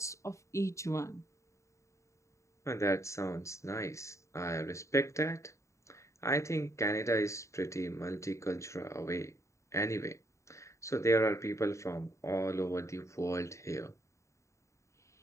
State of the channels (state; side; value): late; right; 0.14 ms